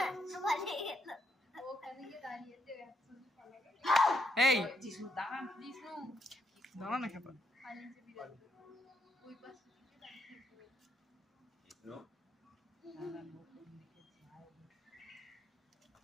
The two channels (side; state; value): both; normal; correlation 0.76